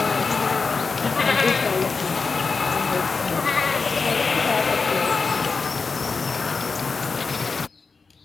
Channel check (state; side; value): quieter; right; 4.6 dB